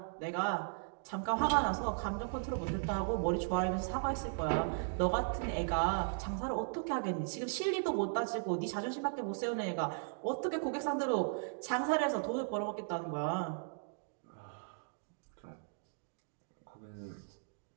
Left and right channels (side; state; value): left; silent; digital silence